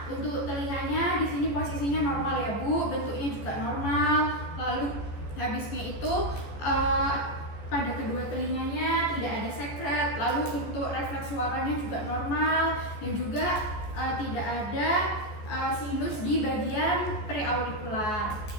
Untuk telinganya di sini posisinya normal ya Bu, bentuknya juga normal. Lalu habisnya itu pada kedua telinganya tidak ada sekret. Lalu untuk refleks suaranya juga normal, dan juga tidak ada sinus di bagian preaurikular.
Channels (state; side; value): late; right; 14 ms